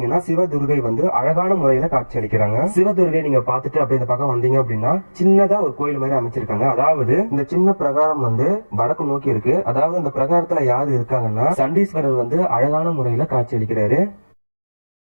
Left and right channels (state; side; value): inverted; both; correlation -1.00